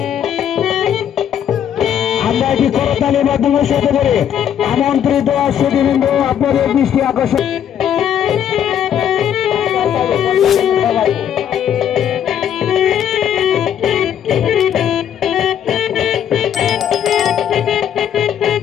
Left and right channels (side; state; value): right; quieter; 9.4 dB